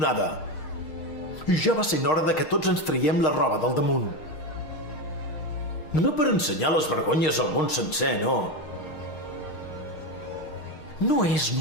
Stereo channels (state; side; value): late; right; 6.6 ms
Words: I ja va sent hora de que tots ens traiem la roba del damunt. No per ensenyar les vergonyes al món sencer, no. No és